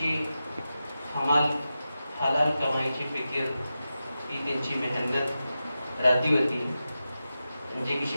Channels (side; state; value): both; inverted; correlation -0.92